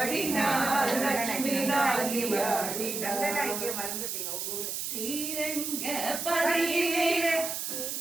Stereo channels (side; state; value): right; noise; hiss, 3 dB below the sound